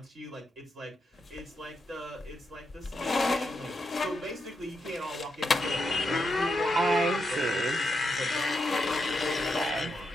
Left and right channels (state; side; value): normal; both; correlation 0.84